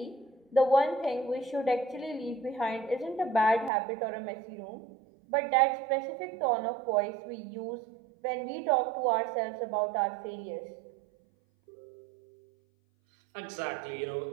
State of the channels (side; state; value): left; drops out; at 3.7 s